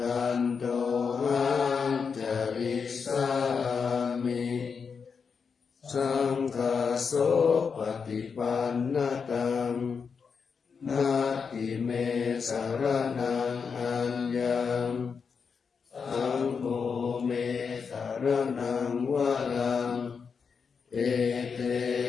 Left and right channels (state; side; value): quieter; right; 5.8 dB